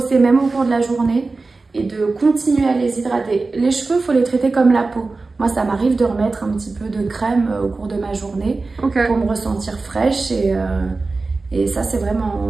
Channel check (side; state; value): left; quieter; 3.7 dB